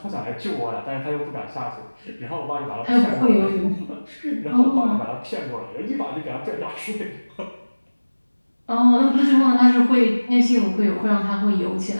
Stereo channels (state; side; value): inverted; both; correlation -1.00